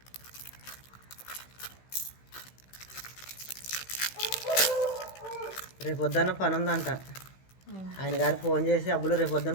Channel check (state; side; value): late; right; 16 ms